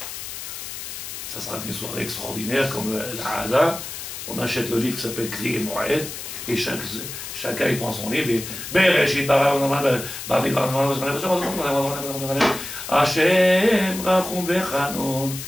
Ça sera qu'une soirée extraordinaire comme la Hada. On achète le livre qui s'appelle Kri et Moed, et chacun il prend son livre et Hashem Rachum Vechanon.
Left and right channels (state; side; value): noise; left; hiss, 9 dB below the sound